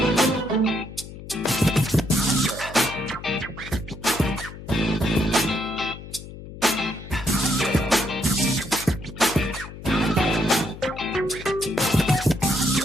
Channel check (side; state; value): left; noise; hum, 13 dB below the sound